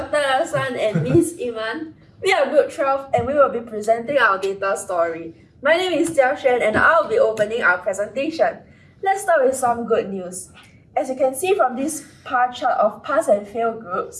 Hassan and Ms. Iman. We are Group 12 and we will be presenting our data story. My name is Jia Xuan and I'll be opening our presentation. Let's start with some good news. As you can see from this pie chart of pass and fail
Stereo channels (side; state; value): both; identical; correlation 1.00